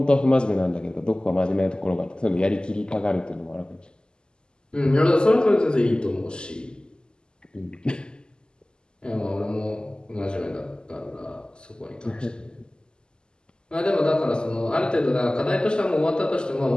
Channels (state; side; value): late; right; 0.047 ms